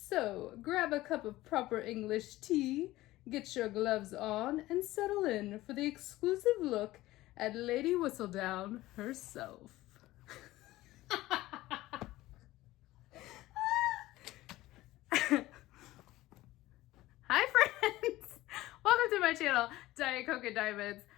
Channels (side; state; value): right; quieter; 17.2 dB